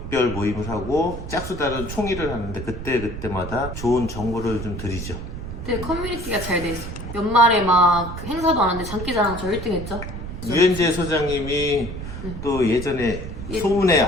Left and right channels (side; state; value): right; noise; rumble, 8 dB below the sound